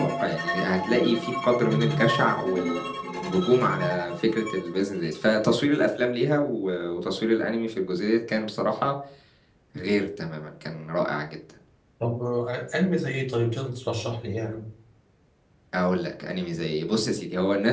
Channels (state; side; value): identical; both; correlation 1.00